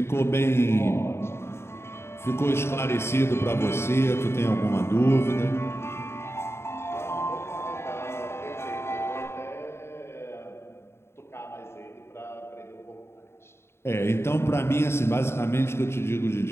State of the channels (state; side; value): late; right; 0.12 ms